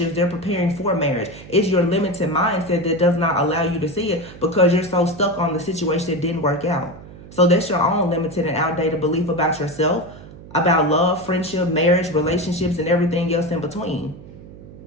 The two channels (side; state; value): right; noise; hum, 17 dB below the sound